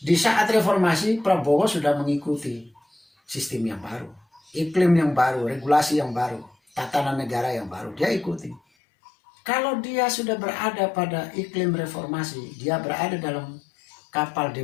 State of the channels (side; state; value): right; drops out; at 8.6 s